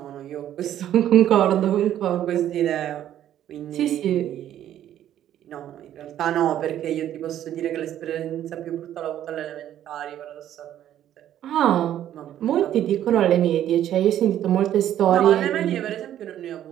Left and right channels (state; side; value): quieter; left; 11.4 dB